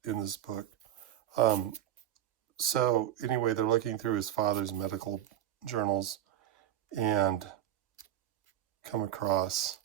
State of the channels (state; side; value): quieter; left; 11.9 dB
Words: book. So anyway, they're looking through his father's medical journals and come across